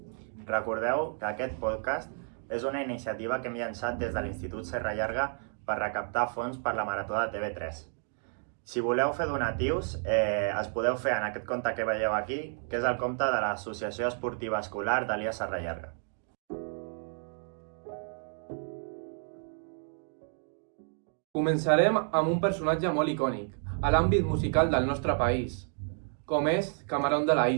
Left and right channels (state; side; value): silent; left; 57 dB below the other